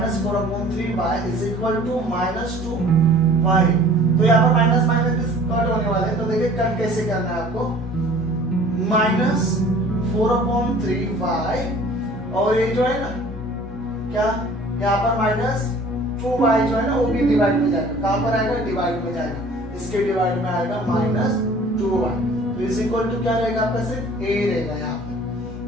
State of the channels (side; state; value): both; normal; correlation 0.49